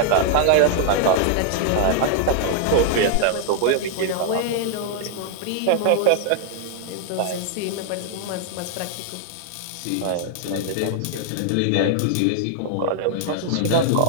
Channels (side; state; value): both; different; correlation 0.00